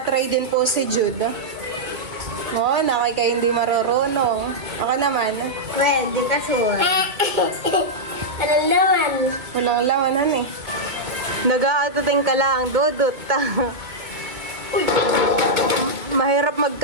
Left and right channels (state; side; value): late; left; 2.2 ms